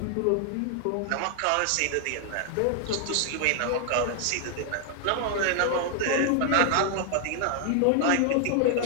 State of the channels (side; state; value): both; different; correlation 0.00